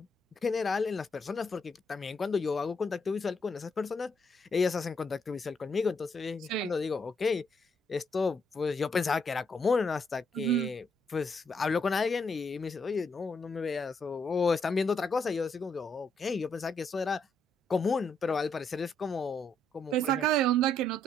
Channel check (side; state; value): both; normal; correlation 0.74